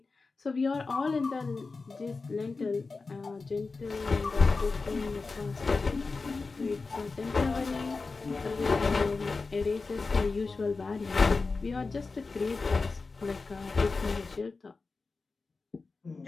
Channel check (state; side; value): quieter; right; 4.1 dB